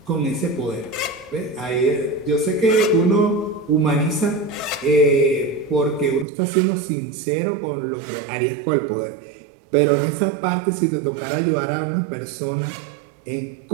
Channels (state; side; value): drops out; left; at 6.2 s